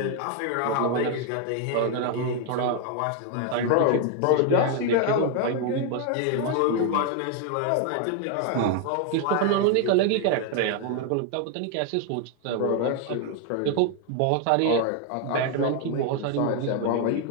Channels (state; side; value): different; both; correlation 0.01